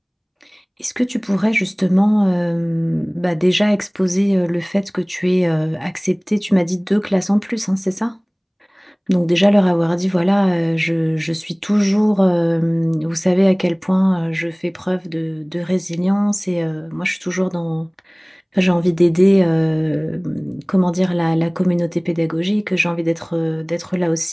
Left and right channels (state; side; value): identical; both; correlation 1.00